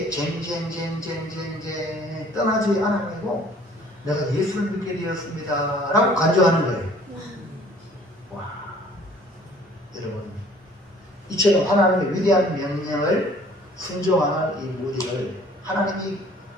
쟁쟁쟁쟁쟁쟁 떠나지 않아가지고 내가 예수를 믿게 되었습니다 라고 간증하는 거예요. 와, 여러분, 이처럼 하나님의 위대한 명령을 순종하는 이 무디를 하나님이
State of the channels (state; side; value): normal; both; correlation 0.54